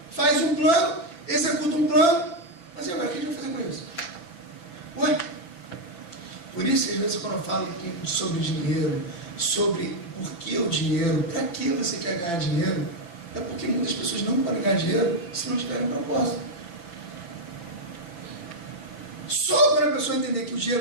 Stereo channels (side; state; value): right; late; 5.9 ms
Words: Faz um plano, executa um plano, mas e agora o que a gente vai isso, às vezes, quando eu falo sobre dinheiro, sobre por que o dinheiro, para que você quer ganhar dinheiro, é porque muitas pessoas não podem ganhar dinheiro se não tiverem propósito. Só quando a pessoa entender que o